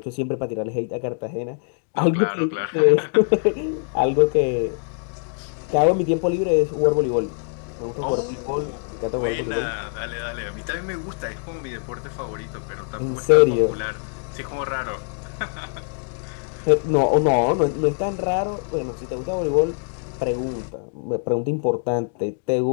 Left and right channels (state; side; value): silent; right; digital silence